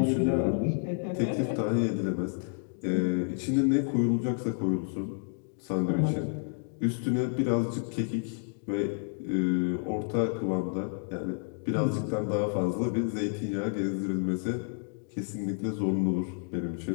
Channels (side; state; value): right; silent; 58 dB below the other